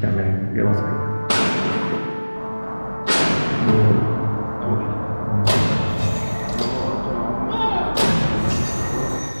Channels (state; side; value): inverted; both; correlation -1.00